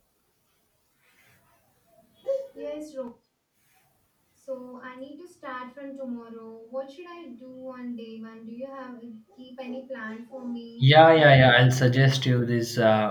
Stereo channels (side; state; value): both; identical; correlation 1.00